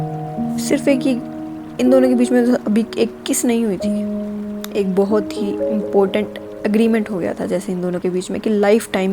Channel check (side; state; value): both; identical; correlation 1.00